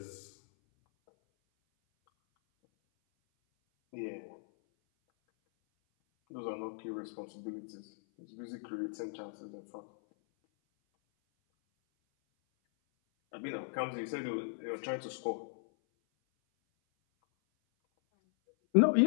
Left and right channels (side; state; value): right; silent; 53 dB below the other